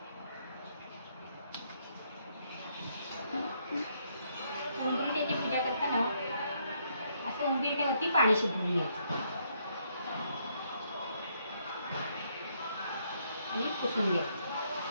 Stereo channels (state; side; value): inverted; both; correlation -0.73